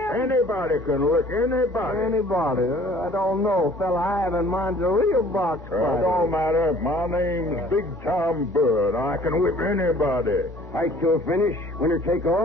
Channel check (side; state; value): both; normal; correlation 0.52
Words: can lick anybody. Anybody? I don't know. Fella I have in mind's a real box fighter. It don't matter. My name's Big Tom Bird. I can whip anybody. Fight to a finish, winner take